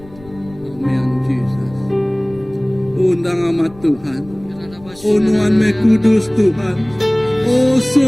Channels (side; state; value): left; noise; rumble, 23 dB below the sound